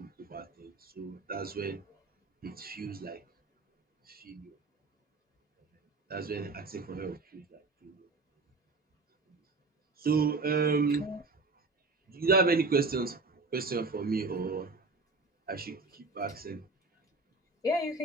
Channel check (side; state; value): left; quieter; 3.7 dB